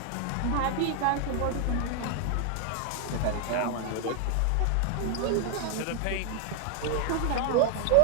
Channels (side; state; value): both; different; correlation 0.00